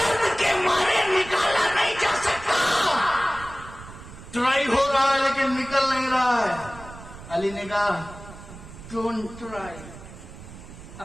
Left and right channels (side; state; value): right; noise; rumble, 16 dB below the sound